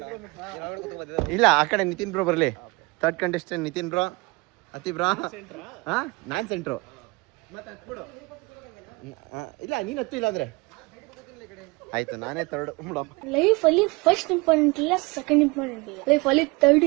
ಇಲ್ಲ ಆ ಕಡೆ ನಿತಿನ್ ಬ್ರೋ ಬರಲಿ. ಥರ್ಡ್ ಕಂಟೆಸ್ಟೆಂಟ್ ನಿತಿನ್ ಬ್ರೋ, ಅತಿ ಬ್ರೋ. ಹಾಂ, ನಾನು ಸೆಂಟ್ರು. ಇಲ್ಲ ನೀನು ಹತ್ತು, ಇಲ್ಲ ಅಂದ್ರೆ ಆಯ್ತು ನಾನೇ ಥರ್ಡ್. ಲೈಫ್ ಅಲ್ಲಿ ಫಸ್ಟ್ ಇಂಪಾರ್ಟೆಂಟ್ ಇಲ್ಲ, ಸೆಕೆಂಡ್ ಇಂಪಾರ್ಟೆಂಟ್ ಇಲ್ಲ, ಲೈಫ್ ಅಲ್ಲಿ ಥರ್ಡ್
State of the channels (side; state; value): left; quieter; 25.8 dB